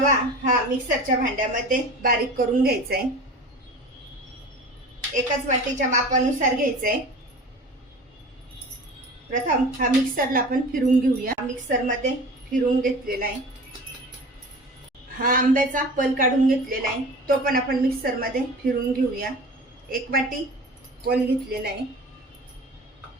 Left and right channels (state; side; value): normal; both; correlation 0.37